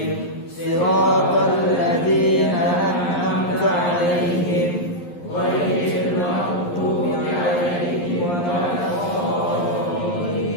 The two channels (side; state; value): right; late; 11 ms